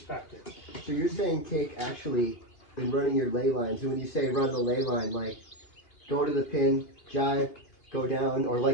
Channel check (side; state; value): right; late; 2.8 ms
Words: So you're saying, Cake, actually, in running your ley lines, and when you say run the ley line, like, go to the pin, jive, go down, or